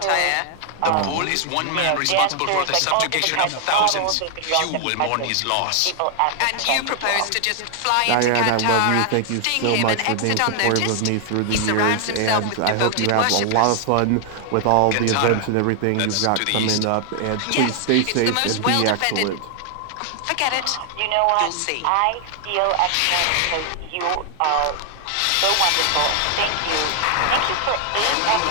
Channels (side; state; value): both; different; correlation 0.00